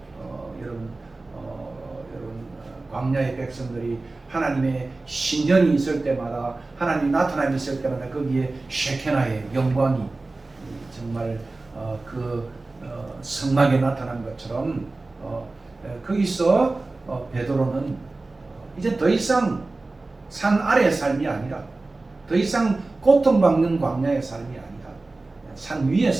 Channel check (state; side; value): quieter; left; 3.3 dB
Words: 여러분 광야의 백성들이 하나님의 신전이 있을 때마다, 하나님이 나타남이 있을 때마다 거기에 셰케나의 영광이 정말 그 성막에 나타난 것처럼 거기서 베드로는 이제 더 이상 산 아래의 삶이 아니라 더 이상 고통받는 광야의 삶이 아니라 산